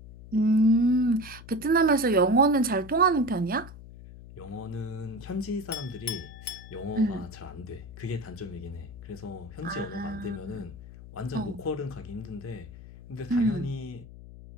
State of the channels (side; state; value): left; noise; hum, 16 dB below the sound